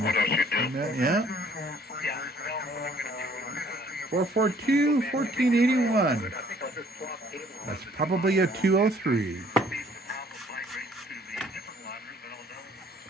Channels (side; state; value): both; normal; correlation 0.59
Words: Yeah. 442-1481. That's probably a 203.